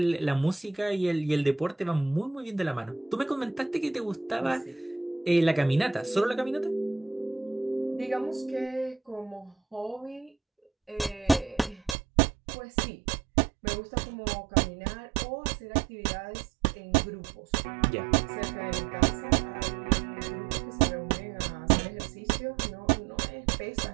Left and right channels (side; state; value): left; drops out; at 12.0 s